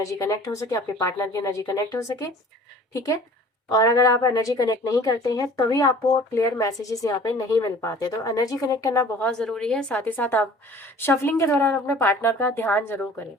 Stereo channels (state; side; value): normal; both; correlation 0.48